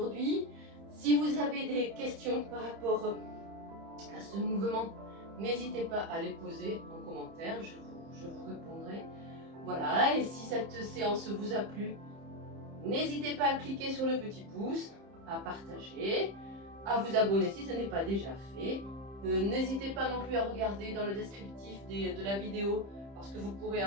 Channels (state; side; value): late; left; 30 ms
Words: Si vous avez des questions par rapport à ce mouvement, n'hésitez pas à les poser en commentaire, je vous répondrai. Voilà, et si cette séance vous a plu, n'hésitez pas à cliquer sur le petit pouce, à partager, à vous abonner si ce n'est pas déjà fait. N'hésitez pas non plus à regarder dans le descriptif de la vidéo, parce que vous pourrez